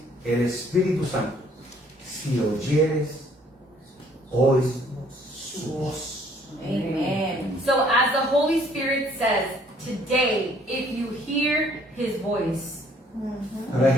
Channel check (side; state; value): both; normal; correlation 0.61